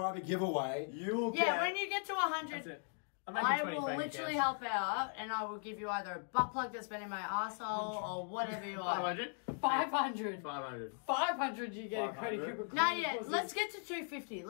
giveaway. You will Yeah, get. when you get to that's 100, it. I'm making I 20 will bank literally accounts. help out, and I will give you either a butt plug that's been in my arsehole or whatever you want. 500? 500. 500. 500 you get a Cody 500? Cooper. No, yeah, let's get to 250.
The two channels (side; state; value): right; silent; 52 dB below the other